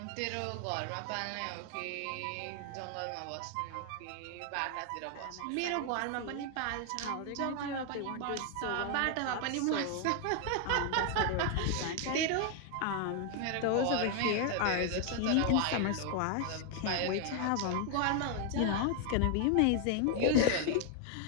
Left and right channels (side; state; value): both; different; correlation 0.00